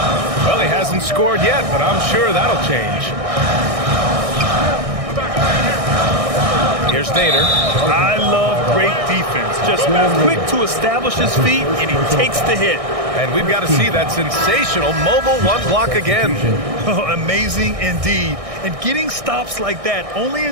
Well, he hasn't scored yet, but I'm sure that'll change. Here's Nader. I love great defense. Just quick to establish his feet, and he takes the hit. And we've got to see that sensational mobile one block again. Oh, amazing indeed. And getting stops like that only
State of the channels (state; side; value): late; left; 1.6 ms